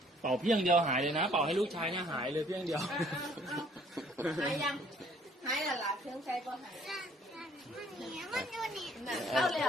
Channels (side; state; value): both; normal; correlation 0.60